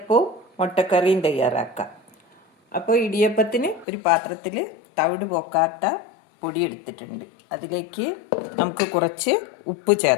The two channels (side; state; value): right; drops out; at 3.9 s